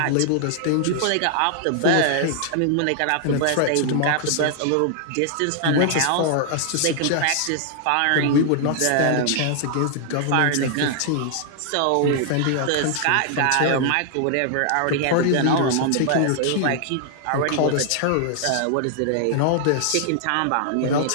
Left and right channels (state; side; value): different; both; correlation -0.01